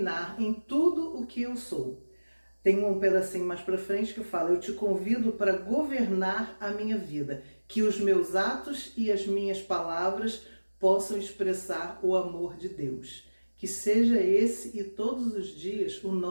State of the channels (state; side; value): inverted; both; correlation -1.00